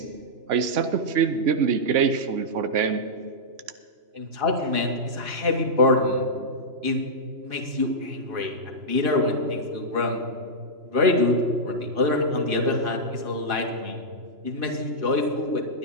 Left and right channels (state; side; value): late; left; 3.0 ms